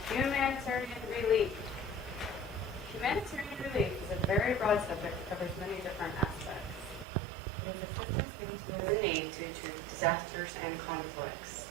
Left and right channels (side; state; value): left; drops out; at 7.1 s